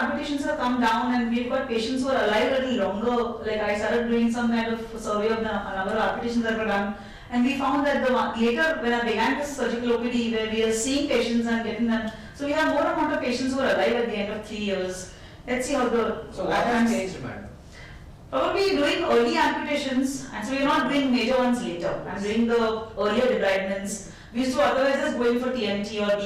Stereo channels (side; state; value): both; identical; correlation 1.00